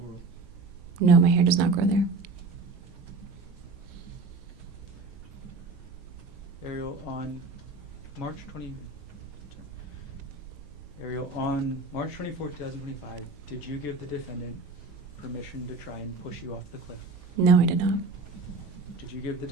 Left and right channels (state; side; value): quieter; left; 3.8 dB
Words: no, my hair does not grow there. Arielle, on March 24th, 2025, did you give the defendant permission to try and push you off the cliff? No, I did not. Did you give the